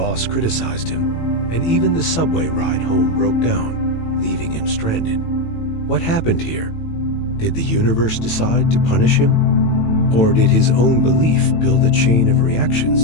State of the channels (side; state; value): right; late; 18 ms